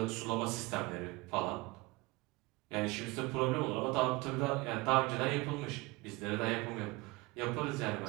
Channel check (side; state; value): left; quieter; 23.0 dB